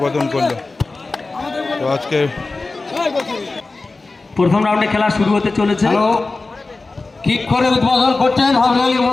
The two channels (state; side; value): quieter; right; 3.6 dB